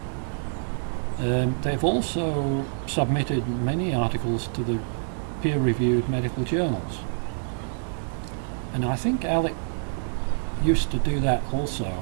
They've also submitted many articles to the peer-reviewed medical journals, and I think Alec used to do that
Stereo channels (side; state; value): left; silent; digital silence